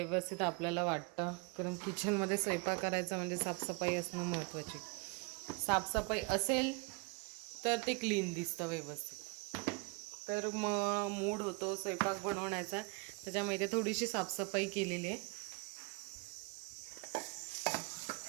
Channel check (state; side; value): quieter; left; 30.2 dB